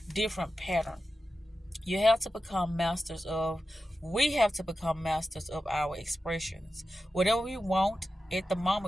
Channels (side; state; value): both; normal; correlation 0.92